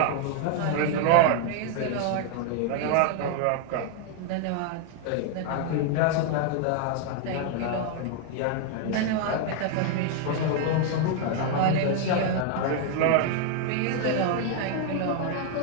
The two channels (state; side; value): different; both; correlation 0.00